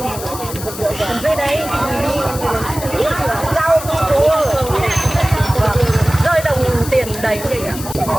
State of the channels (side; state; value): left; noise; hiss, 11 dB below the sound